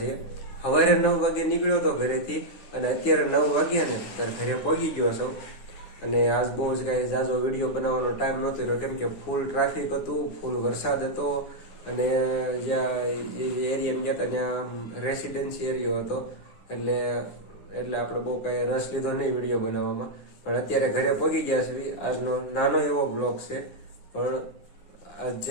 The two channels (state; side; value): late; right; 9.8 ms